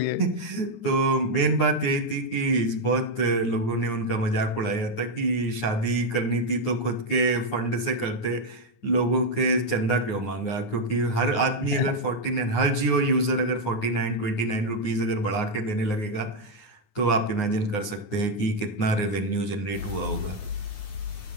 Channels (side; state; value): right; late; 9.6 ms